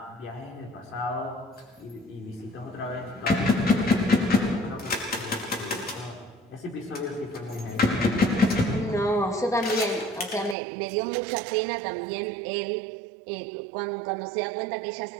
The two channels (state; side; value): drops out; left; at 10.6 s